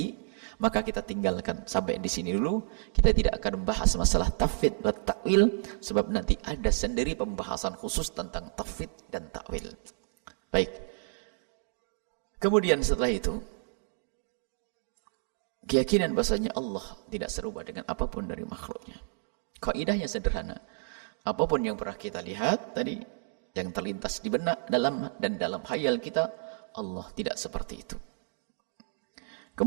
maka kita tinggalkan sampai di sini dulu. Kita tidak akan membahas masalah tafwid dan ta'wil, sebab nanti ada sendiri pembahasan khusus tentang tafwid dan ta'wil. Baik. Kemudian setelah itu, keyakinan bahasanya Allah tidak serupa dengan apapun dari makhluknya. Kaidahnya sederhana. Apapun yang pernah kita lihat tadi, yang terlintas di benak dalam khayal kita, Allah tidak seperti itu.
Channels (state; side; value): silent; left; digital silence